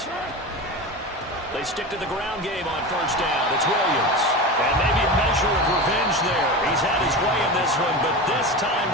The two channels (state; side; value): normal; both; correlation 0.26